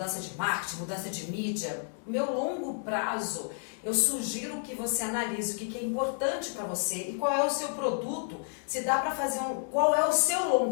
de marketing, mudança de mídia. Meu longo prazo, eu sugiro que você analise o que é importante para você e qual é o seu produto, se dá para fazer qual é o seu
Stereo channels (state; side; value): silent; right; 57 dB below the other